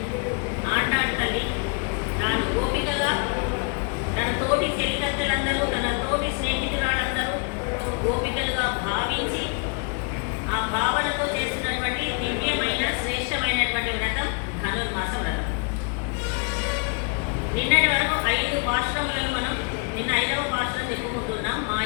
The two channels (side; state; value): right; quieter; 36.5 dB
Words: ఆండాళ్ తల్లి తాను గోపికగా తన తోటి చెలికత్తెలందరూ, తన తోటి స్నేహితురాళ్ళందరూ గోపికలుగా భావించి ఆ భావనతో చేస్తున్నటువంటి దివ్యమైన శ్రేష్టమైనటువంటి వ్రతం ధనుర్మాస వ్రతం. నిన్నటి వరకు 5 పాశురములను మనం నిన్న 5వ పాశురం చెప్పుకుంటున్నాం.